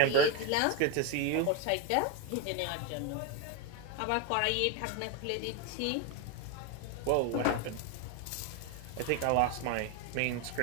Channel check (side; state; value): both; different; correlation 0.02